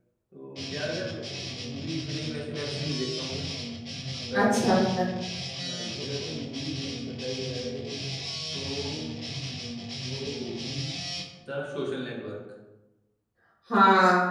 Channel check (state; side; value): identical; both; correlation 1.00